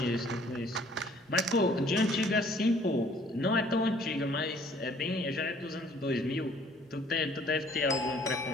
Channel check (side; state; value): both; normal; correlation 0.58